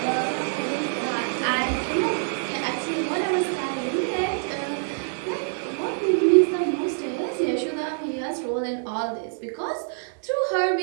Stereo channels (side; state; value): left; silent; 61 dB below the other